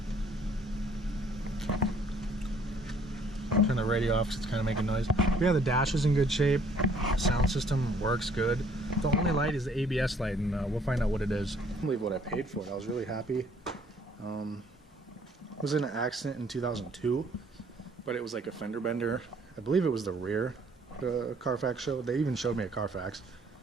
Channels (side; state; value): both; normal; correlation 0.60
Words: Turn the radio off because it's kind of making noise. Yeah, the dash is in good shape. Sound system works good. The only light is the ABS light, and we'll find out what it is. I can't believe what I paid for it. I was really happy. I was in an accident in 2002, but it was like a fender bender. I believe it was the rear, the Carfax showed. They even showed me a Carfax,